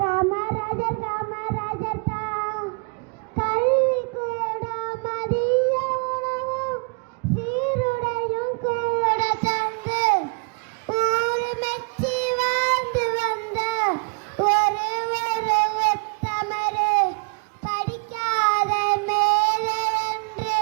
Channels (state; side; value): quieter; left; 36.1 dB